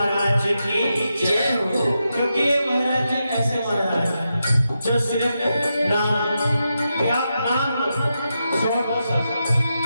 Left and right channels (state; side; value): inverted; both; correlation -0.87